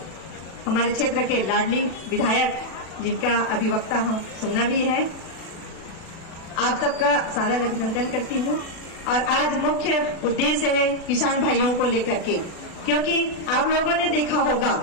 हमारे क्षेत्र के लाडली विधायक जिनका अभिवक्ता हम सुनना भी है, आप सबका सादर अभिनंदन करती हूँ। और आज मुख्य उद्देश्य है किसान भाइयों को लेकर के, क्योंकि आप लोगों ने देखा होगा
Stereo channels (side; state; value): right; late; 36 ms